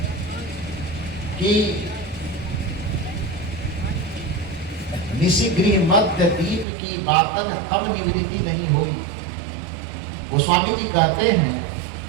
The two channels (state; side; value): drops out; left; at 6.7 s